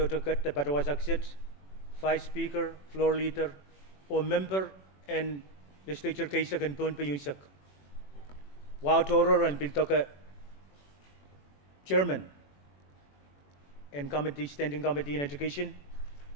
to cut the Patawas exit, 5 Speaker, Floor Leader, or Member and Legislature Kaisak and Pohnpei Yunsak. Wow Toro and Biltoka Chairman and Committee, Standing Committee in Education,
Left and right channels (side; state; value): right; late; 21 ms